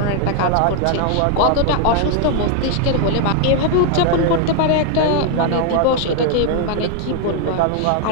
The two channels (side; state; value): both; different; correlation 0.00